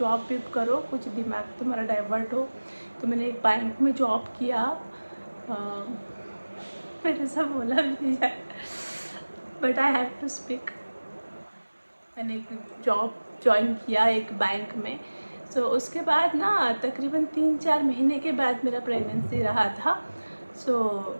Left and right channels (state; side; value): inverted; both; correlation -1.00